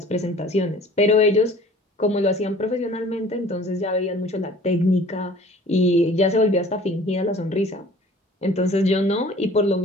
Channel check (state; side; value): normal; both; correlation 0.48